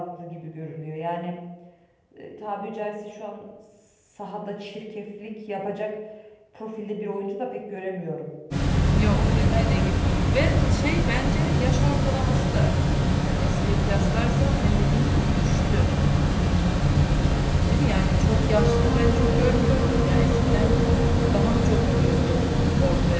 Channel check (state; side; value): identical; both; correlation 1.00